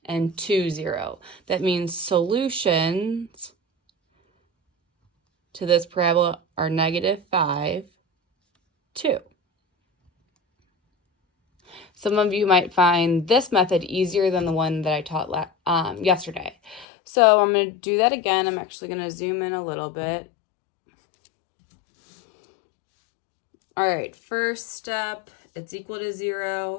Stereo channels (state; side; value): drops out; right; at 16.9 s